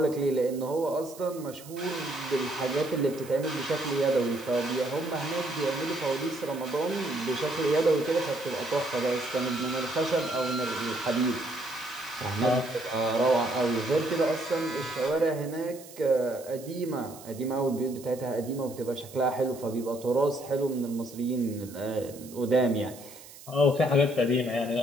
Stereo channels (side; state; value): right; noise; hiss, 18 dB below the sound